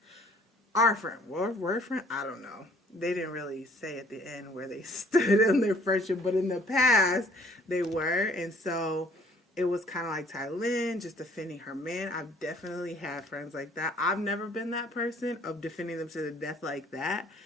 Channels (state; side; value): normal; both; correlation 0.58